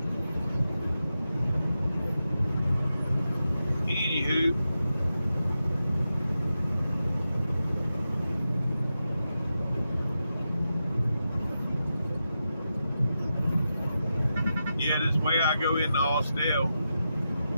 Anywho. Yeah, this way I go into Austell.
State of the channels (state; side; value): inverted; both; correlation -0.89